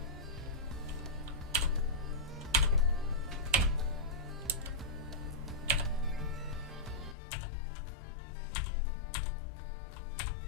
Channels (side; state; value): right; drops out; at 7.2 s